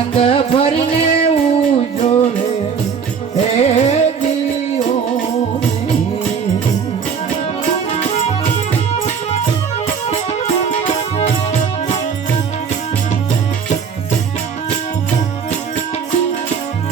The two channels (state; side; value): quieter; left; 6.5 dB